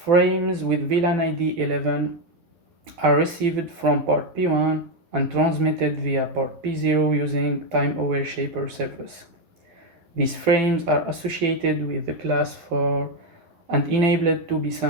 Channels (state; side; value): late; left; 11 ms